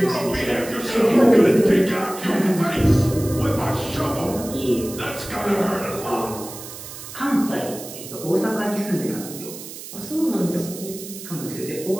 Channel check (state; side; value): noise; right; hiss, 12 dB below the sound